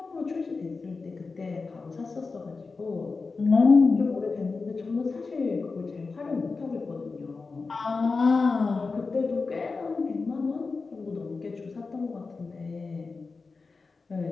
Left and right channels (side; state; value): right; quieter; 4.2 dB